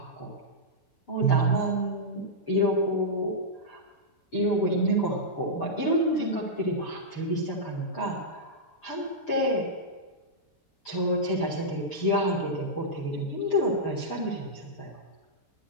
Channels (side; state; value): right; late; 6.8 ms